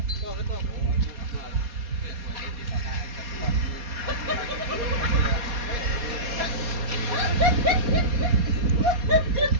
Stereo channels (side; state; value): left; late; 4.2 ms